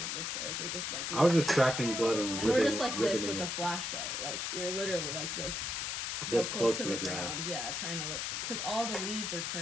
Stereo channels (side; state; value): left; noise; hiss, 2 dB below the sound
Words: went this way. So we're just like I was just tracking blood and we're just like this ribbing with a it. flashlight. Like you're literally like this. So This close to the ground, yeah, trying to look, because all the leaves are